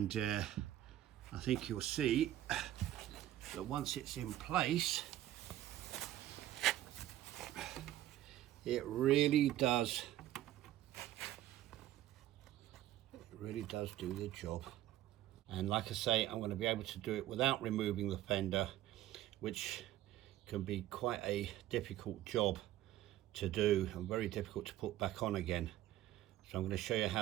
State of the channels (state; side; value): quieter; left; 13.7 dB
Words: I think you'll see that once it's in place, it really does do the job. And like I say, I'm going to be able to do it without removing the fender, which can be quite a difficult job to do and very difficult to put back on again. So I'm going to show you